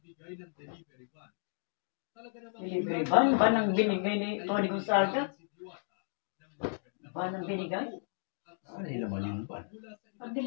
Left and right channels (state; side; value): silent; right; digital silence